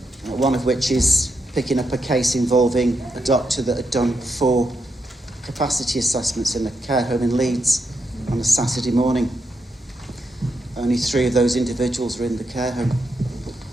One of which is picking up a case involving a doctor that had done 4 capacity assessments in a care home in Leeds on a Saturday morning. Only 3 of those individuals were in the care home.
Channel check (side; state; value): both; normal; correlation 0.83